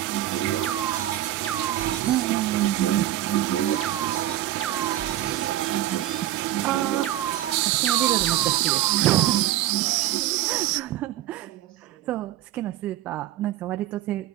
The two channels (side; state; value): left; quieter; 13.4 dB